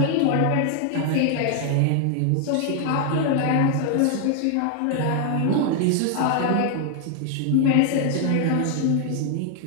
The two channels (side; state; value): both; different; correlation 0.00